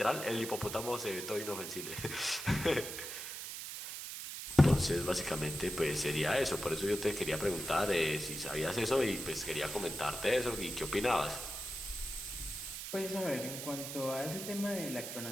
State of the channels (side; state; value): right; noise; hiss, 7 dB below the sound